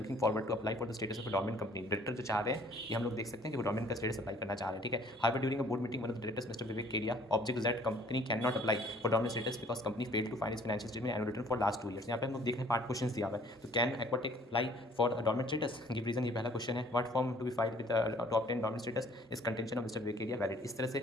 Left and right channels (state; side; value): normal; both; correlation 0.57